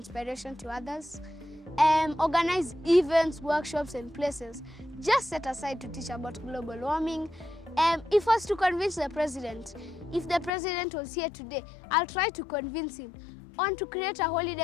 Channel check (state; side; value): drops out; right; at 10.5 s